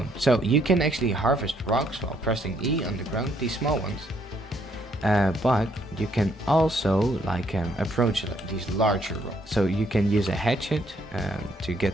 So you can actually harvest rocks while pressing E on the ground, these small ones. But you can also like approach these larger rocks. So you can use a hatchet to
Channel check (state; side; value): normal; both; correlation 0.70